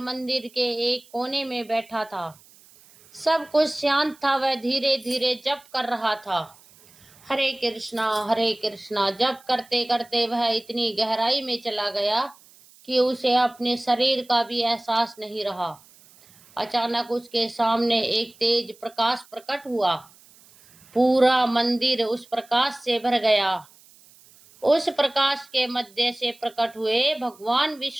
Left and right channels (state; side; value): noise; right; hiss, 26 dB below the sound